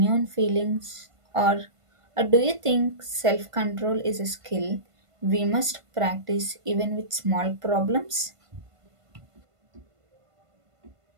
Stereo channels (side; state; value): left; late; 1.5 ms